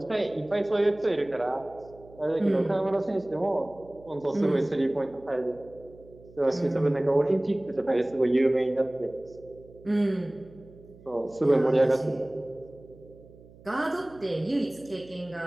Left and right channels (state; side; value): noise; right; hum, 23 dB below the sound